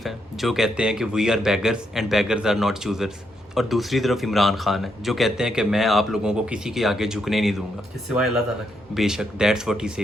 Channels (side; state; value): both; normal; correlation 0.78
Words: हैं जो कहते हैं कि we are beggars and beggars are not choosers, और दूसरी तरफ इमरान खान है जो कहते हैं कि मैं आप लोगों को किसी के आगे झुकने नहीं दूंगा, कि सिवाय अल्लाह ताला के। बेशक दैट्स व्हाट ही